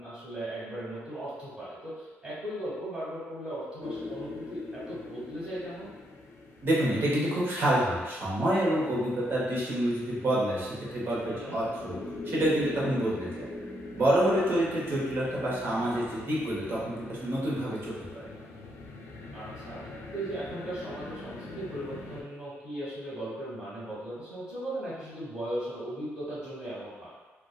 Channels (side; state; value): both; normal; correlation 0.77